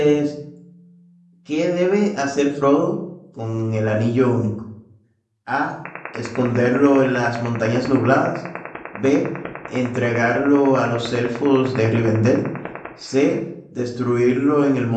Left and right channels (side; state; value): both; identical; correlation 1.00